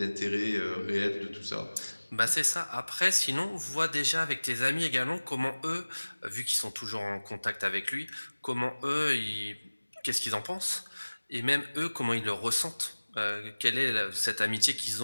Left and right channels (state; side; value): inverted; both; correlation -1.00